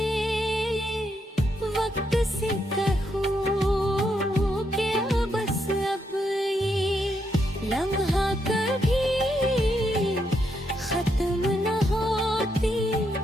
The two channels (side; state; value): both; normal; correlation 0.79